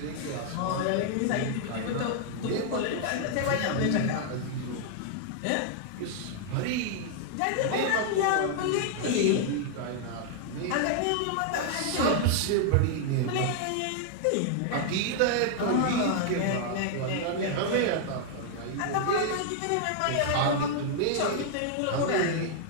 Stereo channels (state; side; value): different; both; correlation 0.00